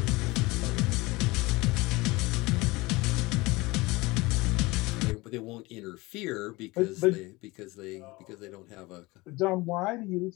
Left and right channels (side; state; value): right; quieter; 22.3 dB